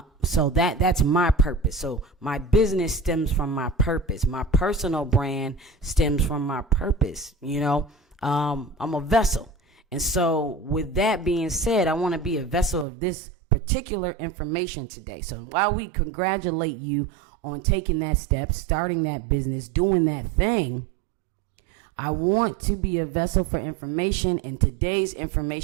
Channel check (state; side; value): drops out; left; at 12.9 s